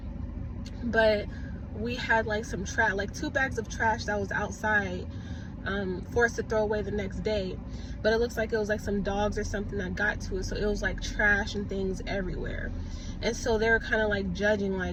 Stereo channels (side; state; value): both; identical; correlation 1.00